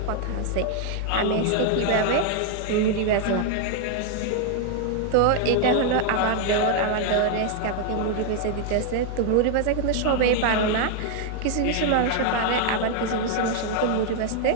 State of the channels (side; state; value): both; different; correlation 0.00